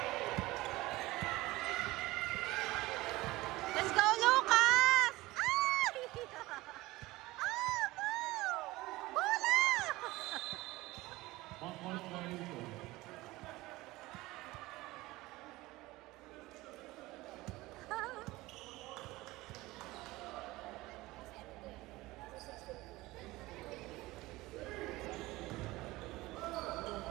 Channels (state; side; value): quieter; left; 19.6 dB